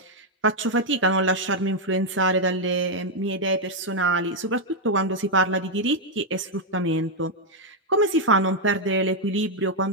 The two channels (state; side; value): normal; both; correlation -0.01